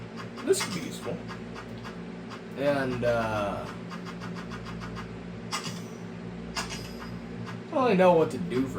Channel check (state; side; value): identical; both; correlation 1.00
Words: This could be useful. And, I don't really know what to do